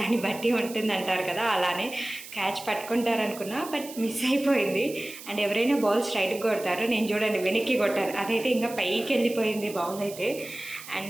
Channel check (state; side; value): noise; right; hiss, 14 dB below the sound